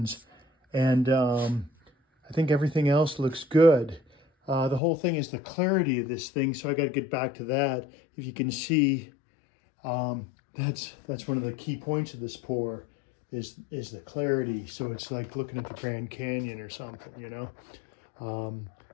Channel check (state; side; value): drops out; right; at 4.8 s